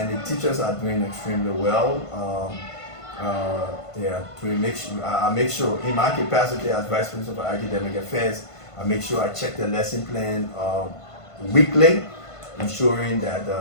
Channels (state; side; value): late; right; 1.5 ms